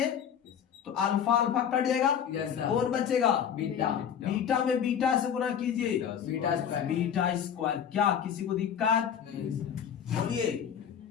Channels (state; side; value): quieter; right; 8.5 dB